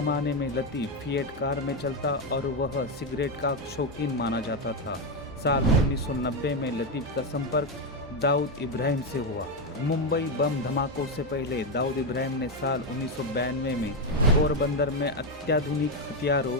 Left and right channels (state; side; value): normal; both; correlation 0.07